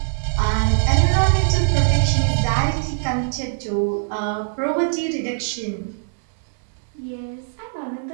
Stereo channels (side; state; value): left; silent; 64 dB below the other